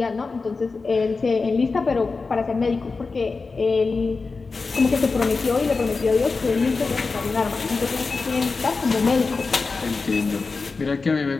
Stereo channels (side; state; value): right; quieter; 4.2 dB